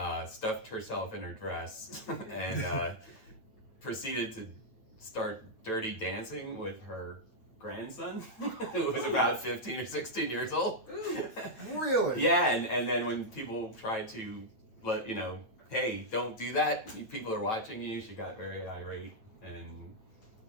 stuffed herself in her dress, and proceeded to start dirty dancing with her grandson, who was about 15 or 16 years old. Really? Yeah, and then when people tried to let hey, don't do that. People are watching you. She got very irate, and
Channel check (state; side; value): late; right; 9.1 ms